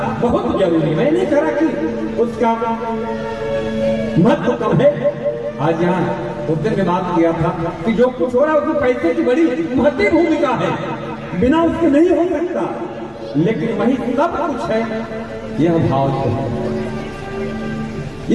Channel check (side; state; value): both; identical; correlation 1.00